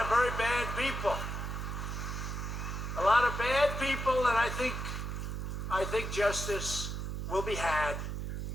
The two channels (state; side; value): noise; right; hum, 4 dB below the sound